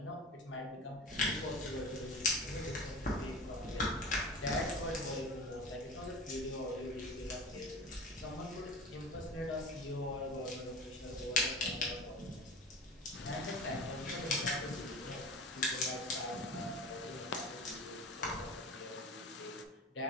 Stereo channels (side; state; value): both; normal; correlation 0.35